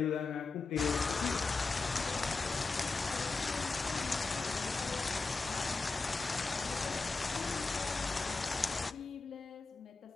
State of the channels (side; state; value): right; quieter; 4.0 dB